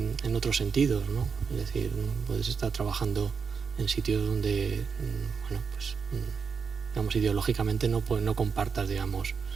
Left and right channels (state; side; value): quieter; left; 5.8 dB